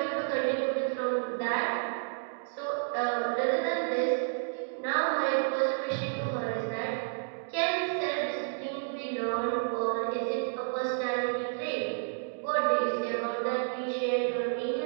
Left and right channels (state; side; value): silent; left; digital silence